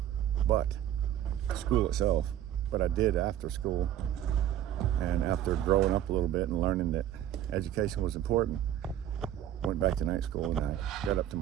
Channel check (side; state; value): left; quieter; 11.4 dB